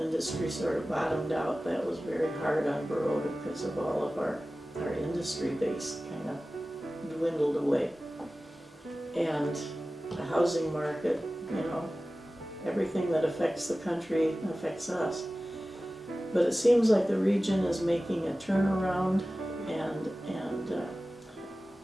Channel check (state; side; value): normal; both; correlation 0.96